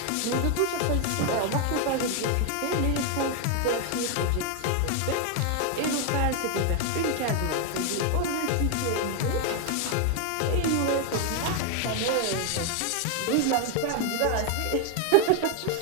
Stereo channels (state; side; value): different; both; correlation 0.01